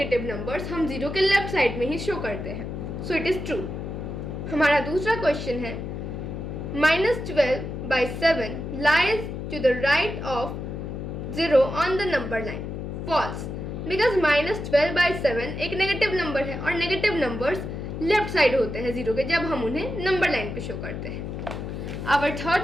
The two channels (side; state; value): left; noise; hum, 6 dB below the sound